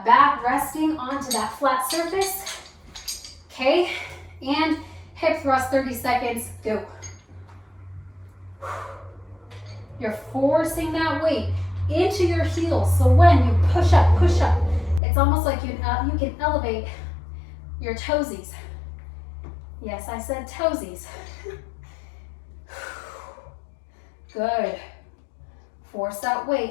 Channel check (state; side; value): drops out; right; at 15.0 s